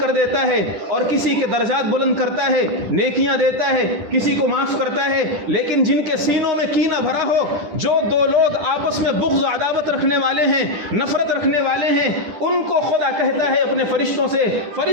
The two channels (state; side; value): late; left; 10 ms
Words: دیتا ہے اور کسی کے درجات بلند کرتا ہے, نیکیاں دیتا ہے, کسی کو معاف کرتا ہے. لیکن جن کے سینوں میں کینہ بھرا ہو, جو دو لوگ آپس میں بغض و عداوت رکھنے والے ہیں, نفرت رکھنے والے ہیں, ان کو خدا کہتا ہے اپنے فرشتوں سے,